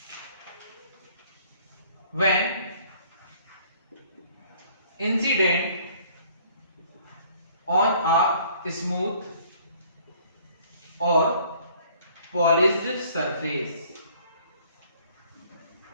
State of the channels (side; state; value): both; inverted; correlation -0.57